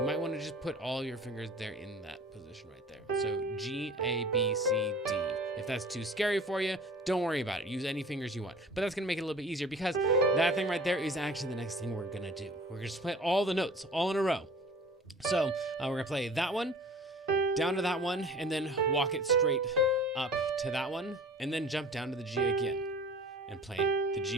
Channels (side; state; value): both; normal; correlation 0.45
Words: might want to just put all your fingers there in that position right there. So G, A, B, C, D. If that's too scary for you, don't worry about it. Use any fingers you want. But that's going to make it a little bit easier because that thing right there is actually the next thing we're going to do. We're going to play all the notes all in a row. So we're going to play that one, down to that one, and then walk it straight up to that one, and then jump down to the G again and play the G